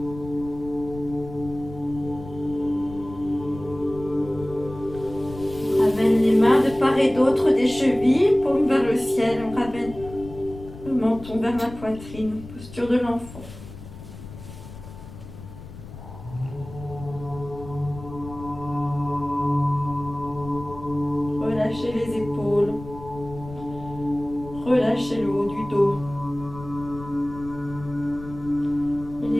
On ramène les mains de part et d'autre des chevilles, paume vers le ciel. On ramène le menton vers la poitrine, posture de l'enfant. Relâchez les épaules. Relâchez le haut du dos. Et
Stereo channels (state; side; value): noise; left; rumble, 14 dB below the sound